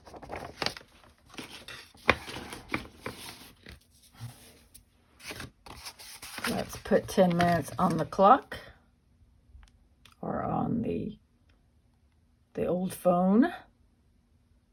Let's put 10 minutes on the clock or on the old phone.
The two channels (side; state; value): both; identical; correlation 1.00